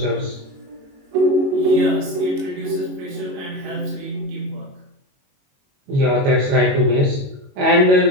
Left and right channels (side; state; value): left; late; 22 ms